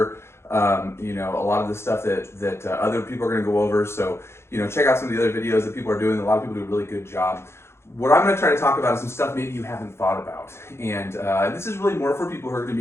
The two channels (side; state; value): right; late; 0.12 ms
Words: a lot of the stuff that other people are going to go over. So check out some of the other videos that people are doing. A lot of people do a really good job. What I'm going to try to talk about is some stuff maybe you haven't thought about. And this is really more for people who are going to